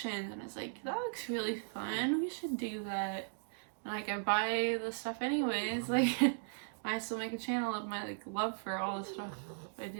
and it's like, that looks really fun, we should do that. And like, I buy the stuff anyways, like I still make a channel of my like love for all the stuff I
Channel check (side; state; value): left; silent; digital silence